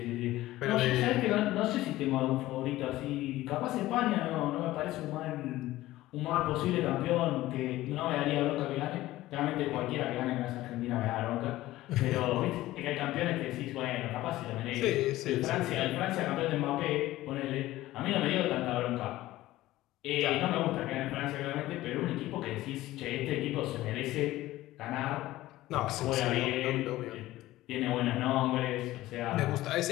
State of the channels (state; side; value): quieter; right; 16.4 dB